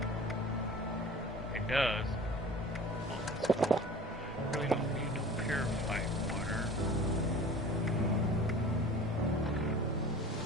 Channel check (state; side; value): normal; both; correlation 0.41